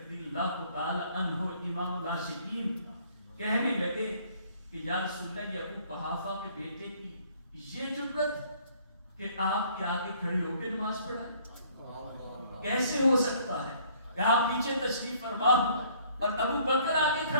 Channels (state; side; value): inverted; both; correlation -0.59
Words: اللہ تعالی عنہ امام العاشقین کہنے لگے کہ یا رسول اللہ یہ ابو قحافہ کے بیٹے کی یہ جرأت کہ آپ کے آگے کھڑے ہو کے نماز پڑھائیں، کیسے ہو سکتا ہے کہ آپ پیچھے تشریف فرما ہو اور ابو بکر آگے